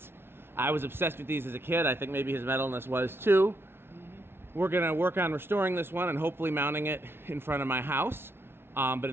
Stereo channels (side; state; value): left; late; 0.11 ms